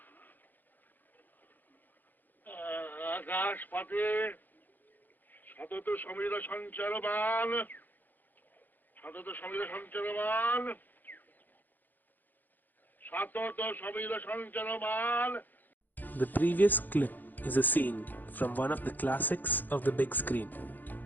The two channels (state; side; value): late; right; 0.086 ms